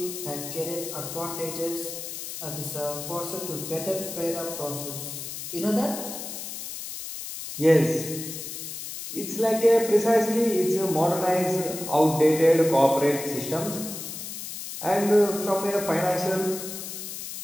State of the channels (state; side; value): noise; left; hiss, 8 dB below the sound